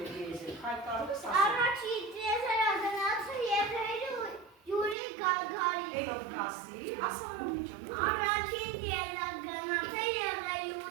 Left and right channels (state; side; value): drops out; left; at 5.0 s